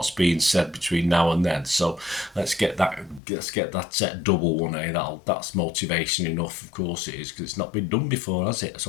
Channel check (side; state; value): right; drops out; at 3.2 s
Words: being said between now and then. So let's get that double one. That's motivation enough. Of course it is, because it's not been done before, has it?